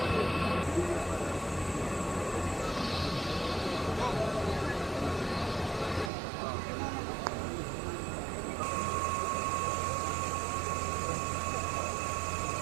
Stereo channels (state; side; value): drops out; left; at 6.1 s